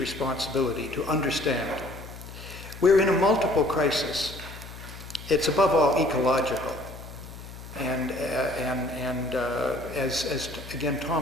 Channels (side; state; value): left; noise; hum, 14 dB below the sound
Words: to understand. We're in a multiple crisis. It's above all ecological. And as again